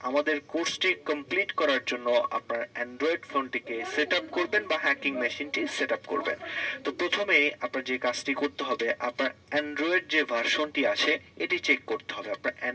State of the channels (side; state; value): both; identical; correlation 1.00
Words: আমাদের কোর্সটি কমপ্লিট করার জন্য আপনার অ্যান্ড্রয়েড ফোনটিকে সেট আপ করবেন বা হ্যাকিং মেশিনটি সেট আপ করবেন। তো প্রথমে আপনার যে কাজটি করতে হবে, আপনার অ্যান্ড্রয়েড যে ভার্সনটি আছে এটি চেক করতে হবে। আপনার